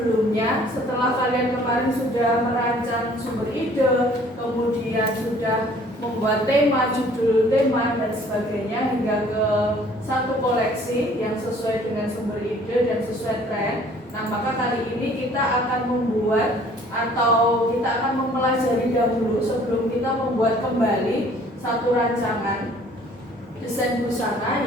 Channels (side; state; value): both; normal; correlation 0.55